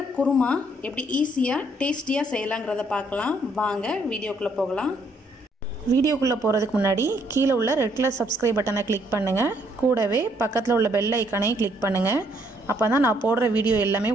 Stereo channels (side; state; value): both; normal; correlation 0.69